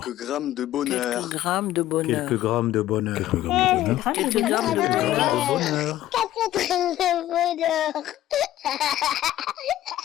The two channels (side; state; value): right; quieter; 13.8 dB